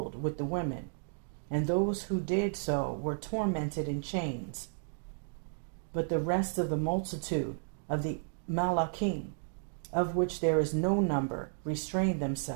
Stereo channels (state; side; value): silent; left; digital silence